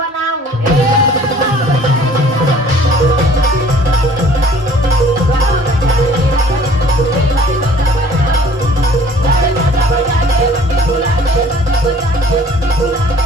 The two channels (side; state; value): both; normal; correlation 0.52